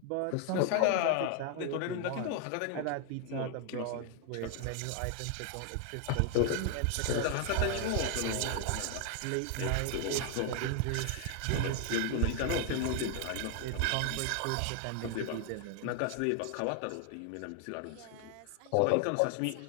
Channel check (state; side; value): different; both; correlation 0.00